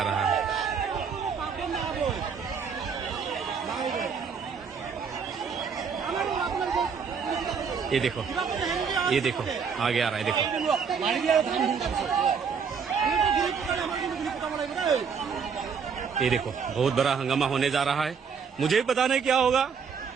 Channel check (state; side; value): quieter; left; 6.2 dB